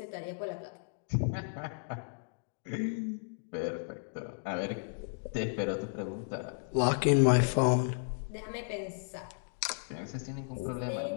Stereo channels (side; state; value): right; silent; digital silence